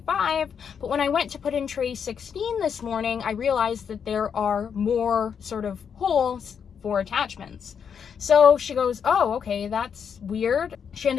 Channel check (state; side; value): quieter; right; 7.2 dB